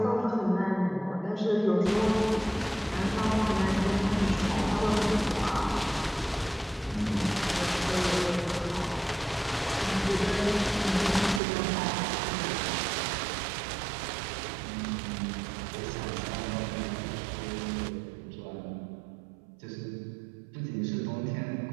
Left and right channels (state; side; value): drops out; left; at 11.4 s